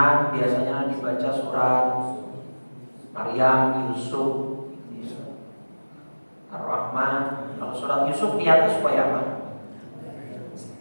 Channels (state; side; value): inverted; both; correlation -1.00